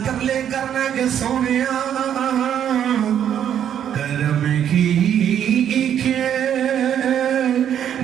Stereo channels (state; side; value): quieter; left; 9.5 dB